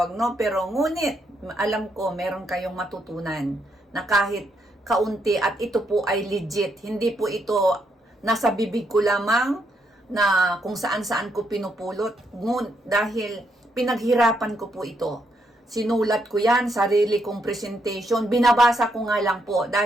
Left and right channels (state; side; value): normal; both; correlation 0.77